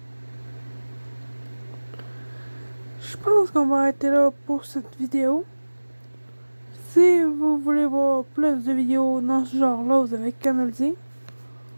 pense qu'on va arrêter là pour cette vidéo. Si vous voulez voir plus de vidéos dans ce genre-là, vous avez qu'à me le dire.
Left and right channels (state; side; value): inverted; both; correlation -1.00